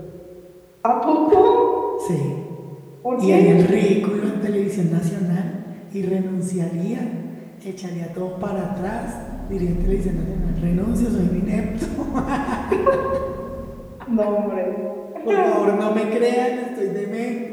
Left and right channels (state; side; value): identical; both; correlation 1.00